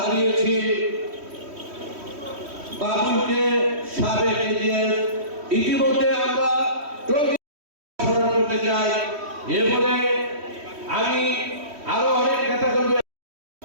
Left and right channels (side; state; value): left; late; 3.1 ms